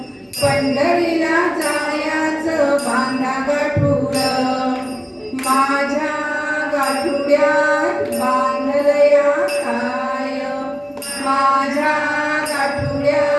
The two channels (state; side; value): identical; both; correlation 1.00